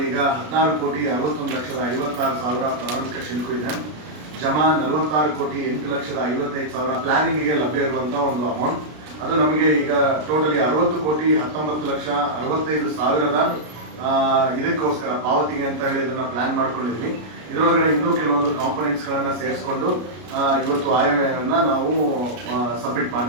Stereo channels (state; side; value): late; left; 33 ms